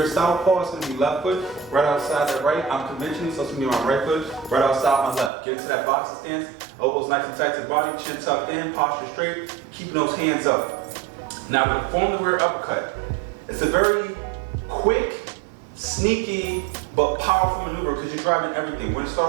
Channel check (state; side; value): drops out; left; at 5.3 s